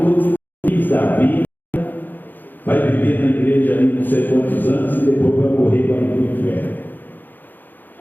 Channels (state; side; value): late; right; 0.088 ms